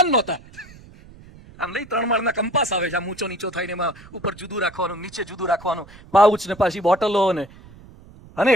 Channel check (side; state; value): right; noise; rumble, 21 dB below the sound